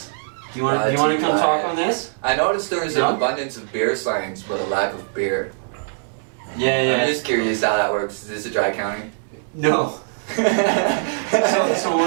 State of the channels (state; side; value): silent; left; digital silence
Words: Do you want to come talk on this? I noticed there is an abundance of beer signs, but a lack of beer. Yeah. I'm just curious how that works. Is this a dry county? No. So